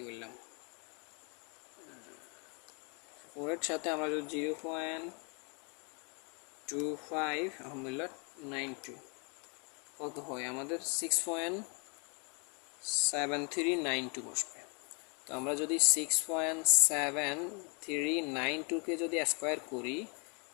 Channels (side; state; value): right; quieter; 36.0 dB